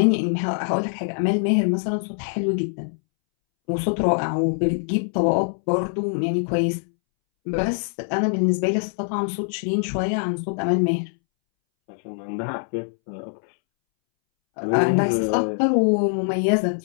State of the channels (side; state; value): right; silent; 63 dB below the other